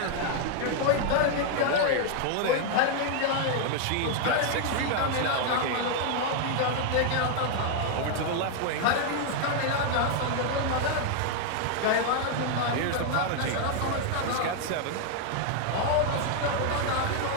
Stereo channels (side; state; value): both; different; correlation 0.00